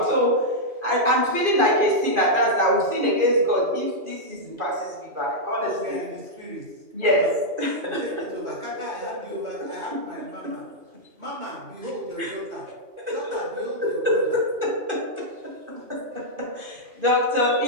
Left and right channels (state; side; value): late; left; 2.5 ms